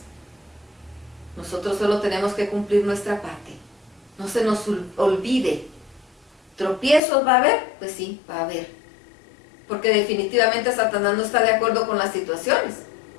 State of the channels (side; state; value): right; drops out; at 7.0 s